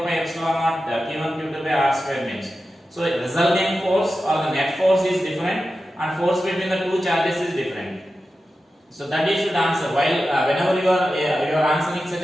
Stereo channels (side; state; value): both; normal; correlation 0.92